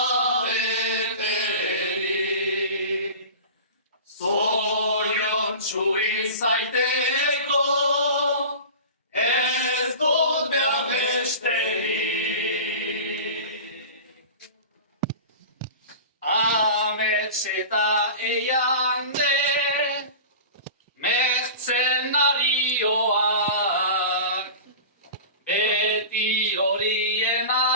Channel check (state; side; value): inverted; both; correlation -0.34